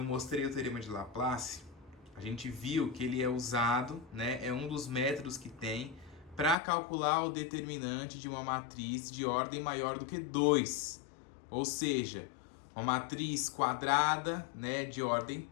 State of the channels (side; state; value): right; drops out; at 6.6 s